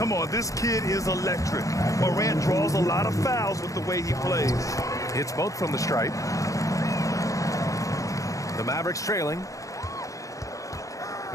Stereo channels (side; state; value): right; late; 0.16 ms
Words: on, this kid is electric. Morant draws a lot of fouls with the way he plays. It's both from the stripe. The Mavericks trailing.